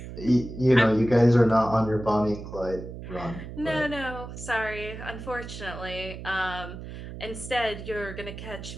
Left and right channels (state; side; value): noise; right; hum, 11 dB below the sound